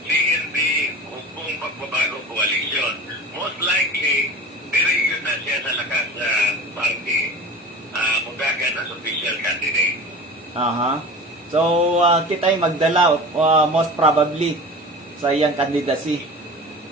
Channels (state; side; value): normal; both; correlation 0.35